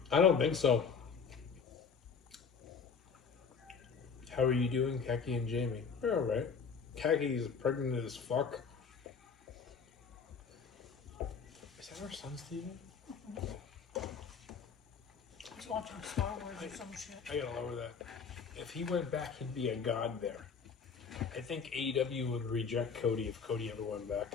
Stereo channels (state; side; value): quieter; right; 5.9 dB